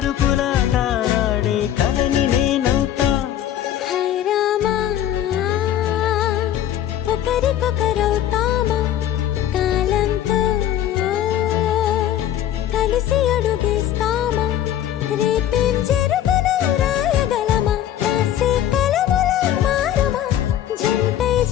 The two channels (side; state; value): right; quieter; 11.3 dB